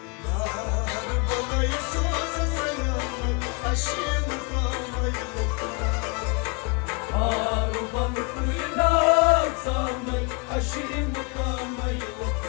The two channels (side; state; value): right; quieter; 31.8 dB